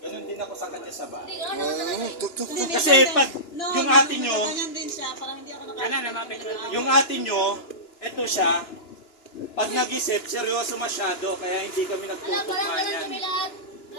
Ganun din ako sa kanya sa bahay. Kasi pag yung ate nyo, yung ate nyo, eto siya, pag nag-isip, seryoso masyado, kaya hindi kami nagtutugma yan.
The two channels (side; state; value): right; late; 2.9 ms